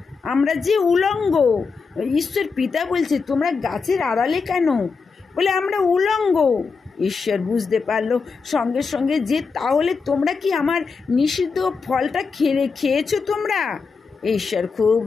আমরা যে উলঙ্গ। ঈশ্বর পিতা বলছে তোমরা গাছের আড়ালে কেন? বলে আমরা উলঙ্গ। ঈশ্বর বুঝতে পারলো সঙ্গে সঙ্গে যে তাহলে তোমরা কি আমার নিষিদ্ধ ফলটা খেয়েছো তোমরা? ঈশ্বর খুব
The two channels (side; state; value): right; quieter; 4.9 dB